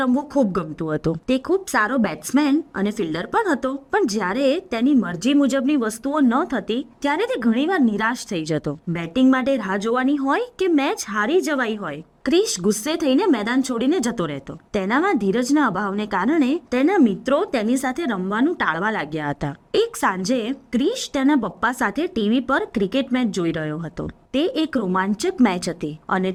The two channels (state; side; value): identical; both; correlation 1.00